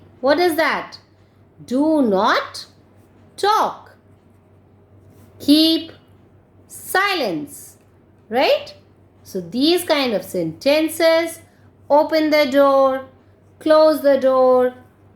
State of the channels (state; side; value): identical; both; correlation 1.00